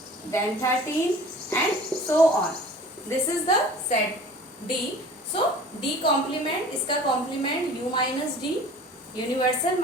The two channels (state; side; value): normal; both; correlation 0.44